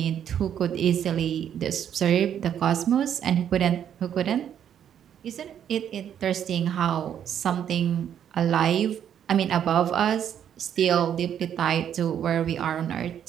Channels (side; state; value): left; quieter; 9.4 dB